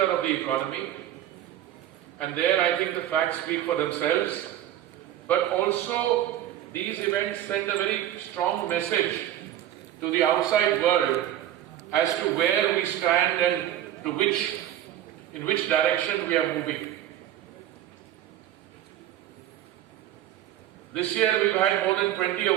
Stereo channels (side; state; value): left; quieter; 12.0 dB